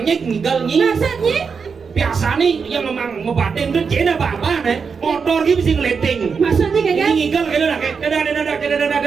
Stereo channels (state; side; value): quieter; left; 5.6 dB